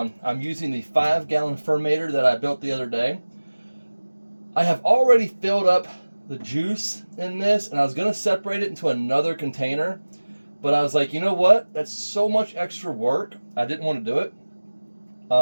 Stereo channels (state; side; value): inverted; both; correlation -1.00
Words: using the 5-gallon fermentator that I built the other day. I have already filled up the juice in this, and I was going to separate it into another container, but I was like, you know what? That's so much extra work. I didn't want to do